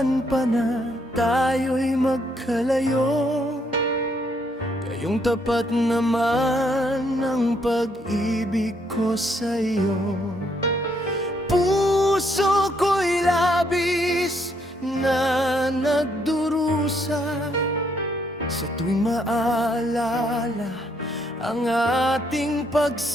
pa na tayo'y magkalayo, gayong tapat naman ang pag-ibig ko sa'yo. Puso ko'y labis na nagdurusa sa tuwing maalala ang ating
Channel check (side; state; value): both; normal; correlation 0.72